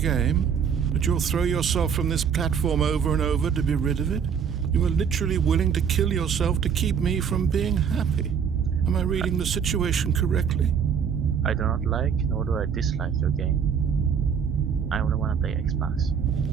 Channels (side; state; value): left; quieter; 7.2 dB